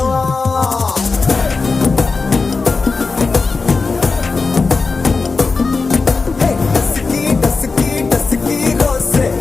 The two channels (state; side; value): quieter; right; 4.2 dB